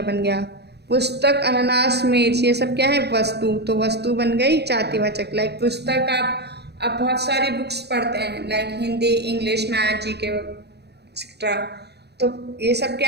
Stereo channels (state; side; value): late; left; 0.48 ms